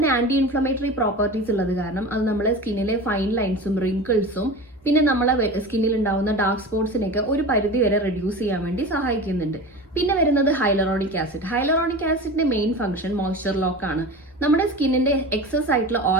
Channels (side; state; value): both; normal; correlation 0.31